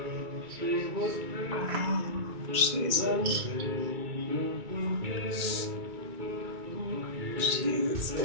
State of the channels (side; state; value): left; late; 2.1 ms